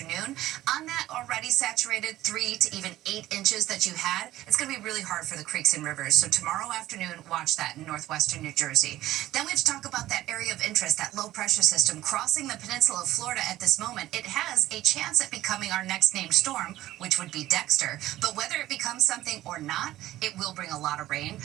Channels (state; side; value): quieter; left; 15.0 dB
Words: On that already saturated 3 to even 8 inches that you had, it's going to be really hard for the creeks and rivers. So tomorrow afternoon, watch that in northwestern New Jersey. Then we have to talk about that area of interest, that low pressure system crossing the peninsula of Florida at this moment. It has a chance at becoming our next named storm, which would be Dexter. But whether it becomes something or not, it will bring a lot of rain.